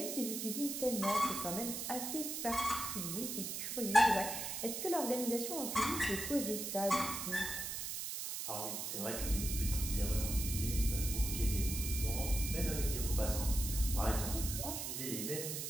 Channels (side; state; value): right; noise; hiss, 4 dB below the sound